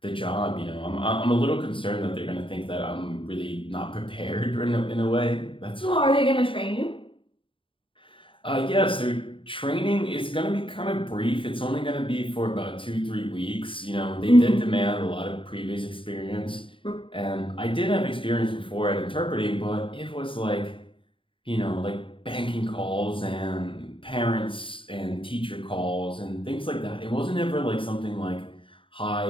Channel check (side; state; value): right; late; 0.25 ms